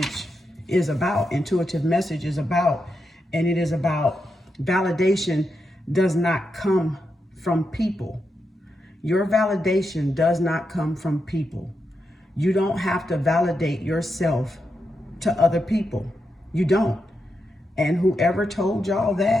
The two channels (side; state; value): both; normal; correlation 0.86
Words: is about. Intuitive message is about, and it is about validation does not come from people. Your validation does not come from people. You don't have to validate yourself to other people. You don't. And whoever told y'all